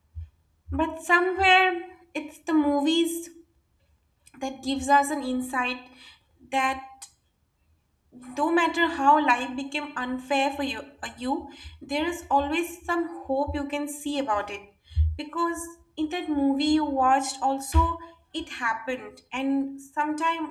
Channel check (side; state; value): both; identical; correlation 1.00